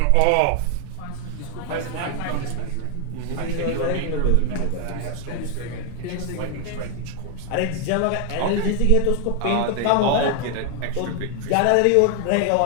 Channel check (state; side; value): different; both; correlation 0.00